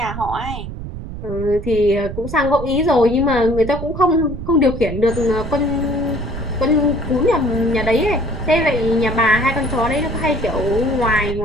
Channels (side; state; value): right; noise; rumble, 8 dB below the sound